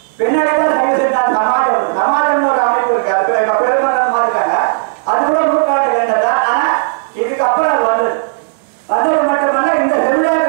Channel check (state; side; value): silent; left; digital silence